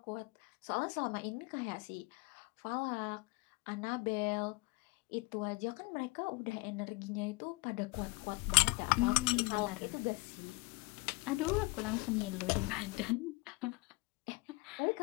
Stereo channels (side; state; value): right; quieter; 25.7 dB